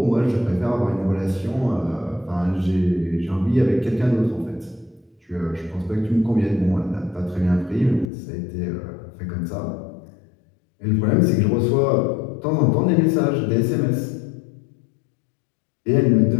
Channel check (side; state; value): right; drops out; at 8.1 s